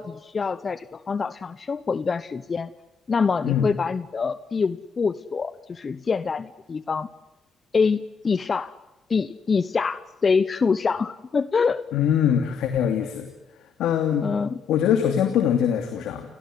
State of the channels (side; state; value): right; quieter; 6.1 dB